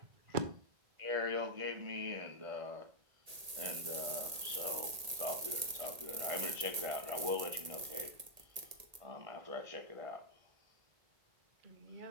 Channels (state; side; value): late; left; 1.8 ms